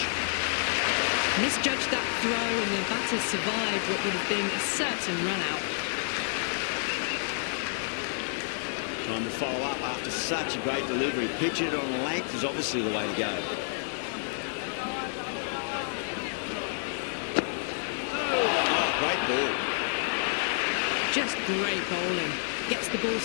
Misjudged that throw and the batter survived what would have been a certain run-out. Trying to follow up after such a great delivery. Pitching it on length is obviously the way to go. Oh, great ball. Just great bowling. Gets the ball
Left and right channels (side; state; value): right; silent; digital silence